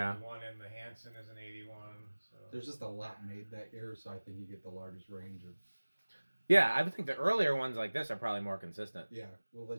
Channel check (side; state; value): both; inverted; correlation -1.00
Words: The one in the Hanson is an 81. So there's just a lot made that year, so I think you get the largest range of. Yeah, I would think the earlier ones like this are probably more consistent. Yeah, well, they